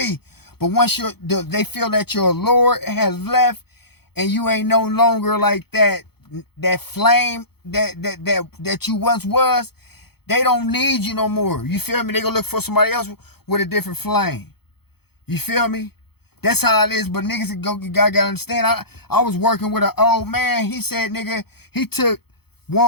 But once they feel that your lure has left and you ain't no longer like that flame that you once was, they don't need you no more. You feel me? They gonna look for somebody else with a different flame. You feel me? That's how it is, but niggas gotta understand. I was working with an old man. He said, nigga, he took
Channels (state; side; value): late; right; 0.96 ms